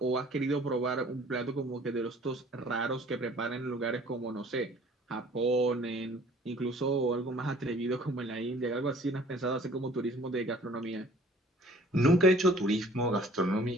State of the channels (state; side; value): normal; both; correlation 0.53